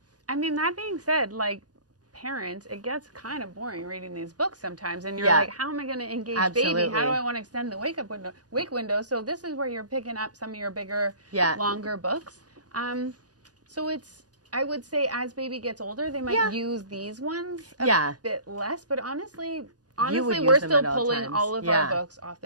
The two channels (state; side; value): late; left; 0.68 ms